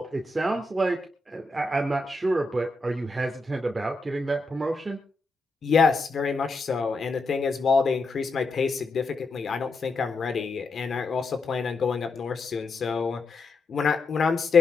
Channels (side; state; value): right; quieter; 3.1 dB